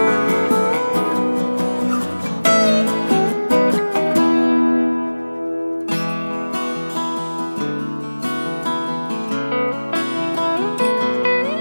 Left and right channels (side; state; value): both; inverted; correlation -1.00